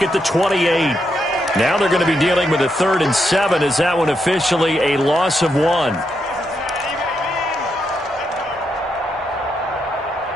at the 28. Now they're going to be dealing with a 3rd and 7 as that one officially a loss of 1.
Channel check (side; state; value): both; normal; correlation 0.81